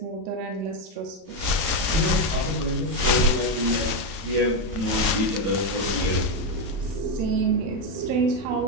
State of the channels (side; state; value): left; late; 31 ms